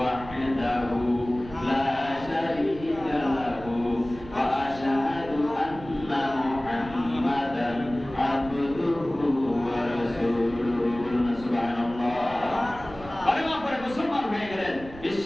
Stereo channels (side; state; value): right; noise; rumble, 16 dB below the sound